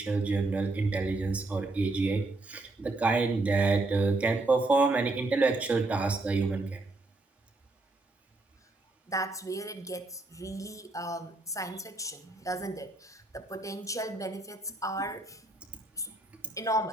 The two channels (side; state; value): left; quieter; 3.0 dB